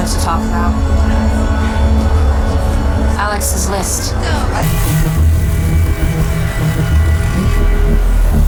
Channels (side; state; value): both; identical; correlation 1.00